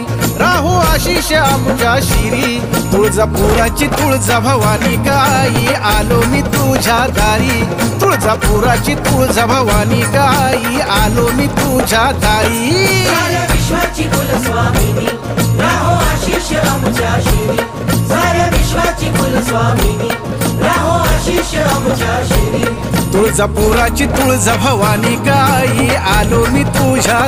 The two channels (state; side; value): identical; both; correlation 1.00